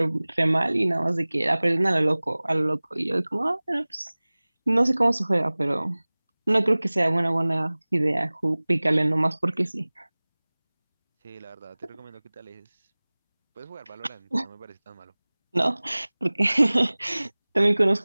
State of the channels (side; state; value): both; inverted; correlation -1.00